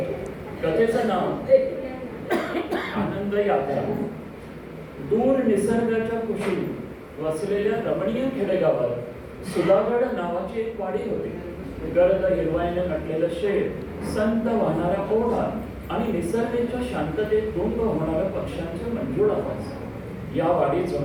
कथेचं नाव आनंद यात्रा. दूर निसर्गाच्या कुशीत वसलेल्या रमणीय खेडेगावात सुधागड नावाची एक वाडी होती. गर्द हिरवाईने नटलेलं शेत, संत वाहणारा ओढा आणि निसर्गाच्या शांततेत गुंग होणाऱ्या पक्ष्यांचे मंजूळ आवाज या वाडीत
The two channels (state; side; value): identical; both; correlation 1.00